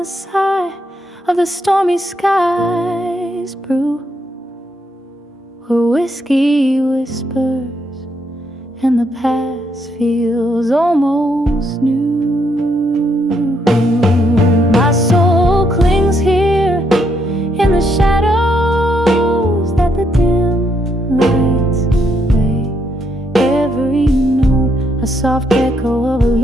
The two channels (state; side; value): normal; both; correlation 0.75